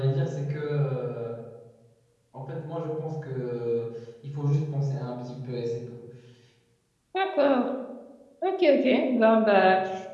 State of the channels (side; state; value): both; identical; correlation 1.00